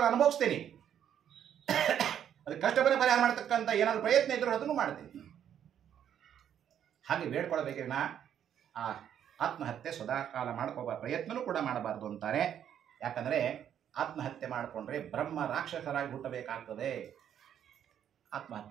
ಅನುಭವಿಸ್ತೀನಿ, ಅದಕ್ಕೆ ಕಷ್ಟವನ್ನು ಪರಿಹಾರ ಮಾಡ್ತಕ್ಕಂಥ ಏನಾದರೂ ಪ್ರಯತ್ನ ಇದ್ರೂ ಅದನ್ನು ಮಾಡ್ತೀನಿ. ಹಾಗೆ ಬೇಡ್ಕೊಳ್ಬೇಕಿನ ಆ ಆತ್ಮಹತ್ಯೆ ಸದಾಕಾಲ ಮಾಡ್ಕೋಬಾರ, ಪ್ರಯತ್ನನೂ ಕೂಡ ಮಾಡಬಾರ್ದು ಅಂತಾರೆ. ಯಾಕಂದರೆ ಆತ್ಮಹತ್ಯೆ ಮಾಡಿಕೊಂಡ್ರೆ ಬ್ರಹ್ಮ ರಾಕ್ಷಸರಾಗಿ ಹುಟ್ಟಬೇಕಾಗ್ತದೆ.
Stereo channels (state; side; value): quieter; left; 9.5 dB